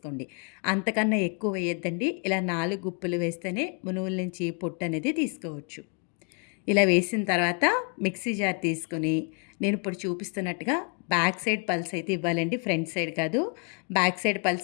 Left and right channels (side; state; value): right; quieter; 37.7 dB